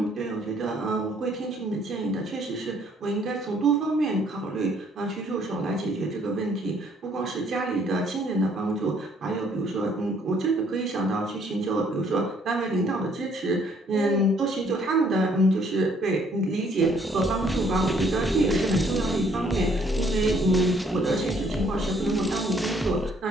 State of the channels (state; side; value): normal; both; correlation 0.64